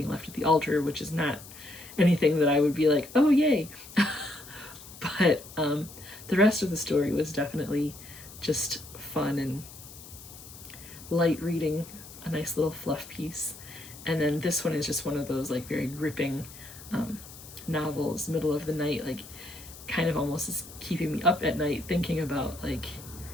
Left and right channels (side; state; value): left; noise; hiss, 17 dB below the sound